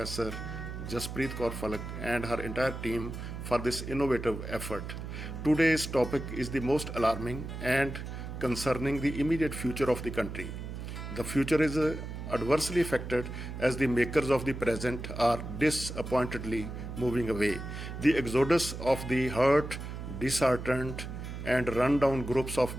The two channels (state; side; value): noise; right; hum, 8 dB below the sound